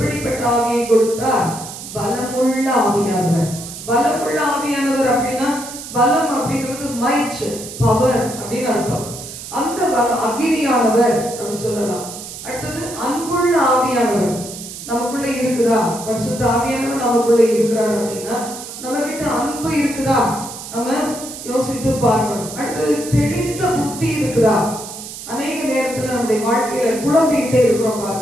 ஆவியை கொடுத்தார்? பலமுள்ள ஆவியானவர். பலமுள்ள ஆவியானவர் அப்படின்னா, பலம் அப்படிங்கிறது மைட், பவர் அப்படின்னு அர்த்தம். அந்த அக்னியானவர் அப்படி சொல்லலாம். அடுத்தது அன்புள்ள ஆவியானவர். நமக்குள்ள இருக்குதா? பரிசுத்த ஆவியானவர் நமக்குள்ள இருக்கிறார் அப்படின்னா நம்ம கிட்ட அன்பு இருக்குதா? நம்ம யோசித்து பார்க்கணும். அடுத்தது தெளிந்த புத்தி இருக்குதா? அநேக நேரத்துல நம்முடைய வாழ்க்கையில குழம்பிக்கிட்டே இருக்கிறோம்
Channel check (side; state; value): right; noise; hiss, 11 dB below the sound